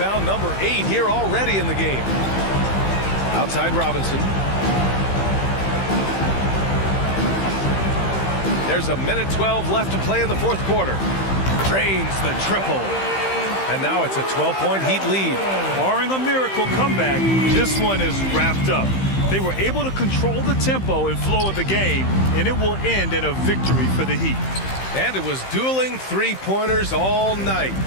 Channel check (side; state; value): right; late; 15 ms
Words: number 8 here already in the game. Outside Robinson. There's a minute 12 left to play in the fourth quarter. Drains the triple. And now it's a 12-point Heat lead. Barring a miracle comeback, this one is wrapped up. They were able to control the tempo and flow of the game, and it will end in a victory for the Heat. And it was dueling three-pointers all night.